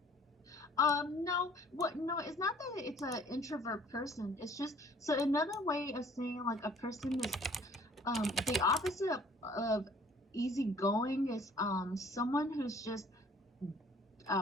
no, what no, it's not that it's an introvert person. It's just so another way of saying like a person is the opposite of easygoing is someone who's just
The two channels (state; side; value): normal; both; correlation 0.55